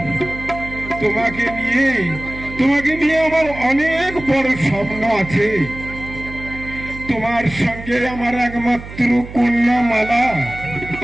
তোমাকে নিয়ে আমার অনেক বড় স্বপ্ন আছে। তোমার সঙ্গে আমার একমাত্র কন্যা মালা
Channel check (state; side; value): noise; right; hum, 13 dB below the sound